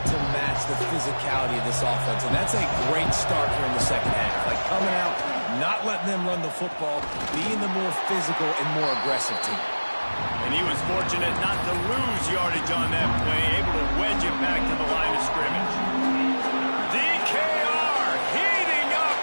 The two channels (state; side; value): inverted; both; correlation -1.00